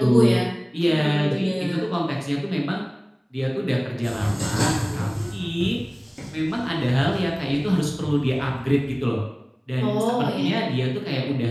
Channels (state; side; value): identical; both; correlation 1.00